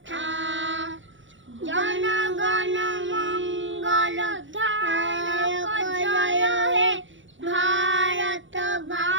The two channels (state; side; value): late; left; 0.55 ms